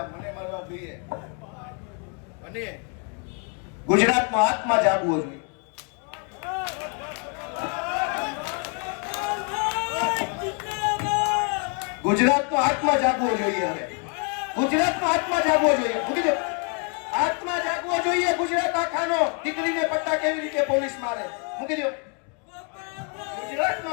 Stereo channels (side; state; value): right; quieter; 38.9 dB